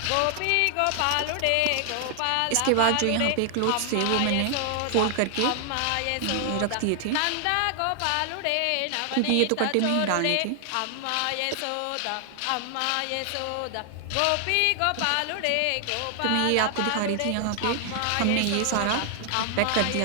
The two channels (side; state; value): both; different; correlation 0.00